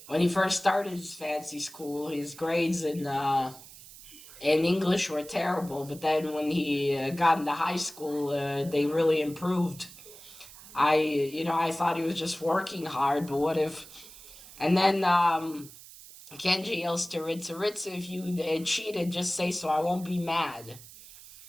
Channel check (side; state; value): right; noise; hiss, 18 dB below the sound